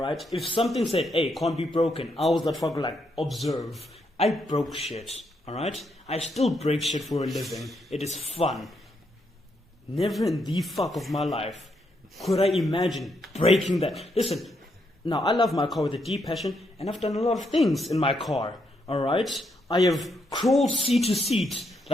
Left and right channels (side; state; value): both; normal; correlation 0.78